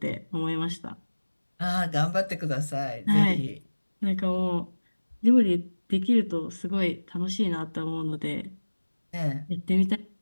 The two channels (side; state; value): both; inverted; correlation -1.00